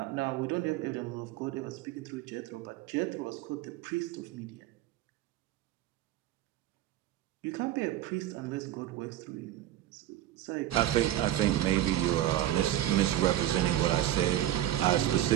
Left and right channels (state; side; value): quieter; left; 13.3 dB